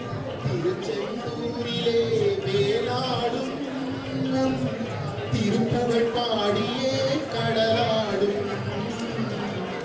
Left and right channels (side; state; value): both; identical; correlation 1.00